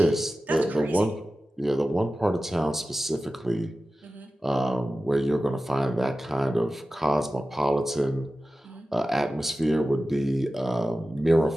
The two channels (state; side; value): normal; both; correlation 0.95